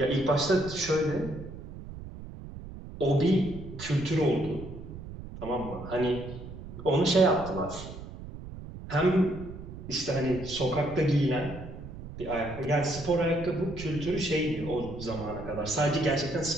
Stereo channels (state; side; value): noise; right; rumble, 12 dB below the sound